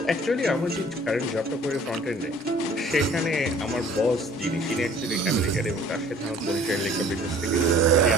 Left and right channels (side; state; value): both; normal; correlation 0.51